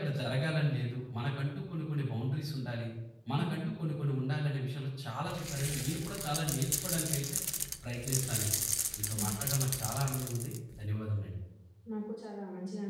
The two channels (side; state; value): both; identical; correlation 1.00